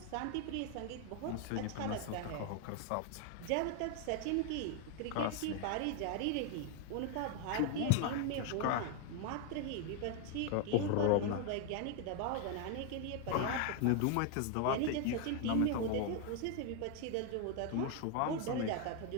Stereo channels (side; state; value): both; different; correlation 0.01